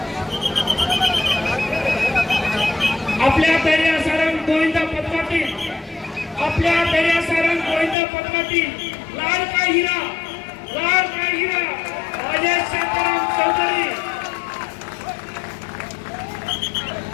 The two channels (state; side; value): drops out; right; at 8.0 s